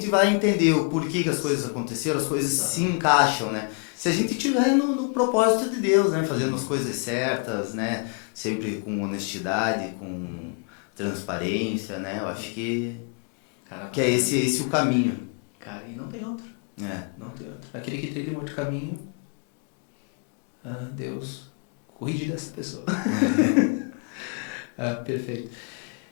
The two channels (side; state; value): right; quieter; 36.9 dB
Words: vai entender o porquê que as coisas aconteceram, as coisas se encaixam, né? Se a gente estiver no propósito de Deus, né? Fazendo as coisas certas, né? Sempre com honestidade, com transparência, né? Eu acho que é esse o caminho. Cara, e não tem outro. É. Não tem outro. Aquele que trilha um outro caminho, Deus cuide dessa pessoa. Perfeito.